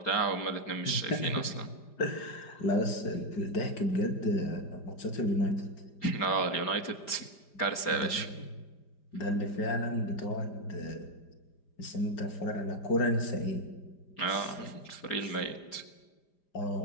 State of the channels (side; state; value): right; late; 5.0 ms